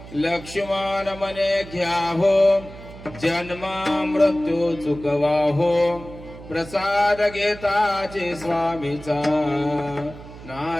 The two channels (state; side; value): noise; right; hum, 16 dB below the sound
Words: लक्ष्मण मने घ्यावो जन्म मृत्यू चुकवाहो प्रसाद घेताची स्वामीचा